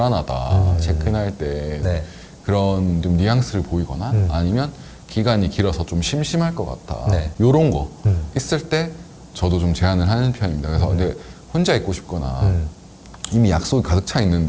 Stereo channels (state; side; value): identical; both; correlation 1.00